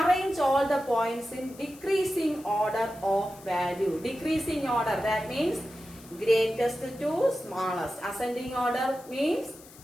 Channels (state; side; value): noise; left; hiss, 21 dB below the sound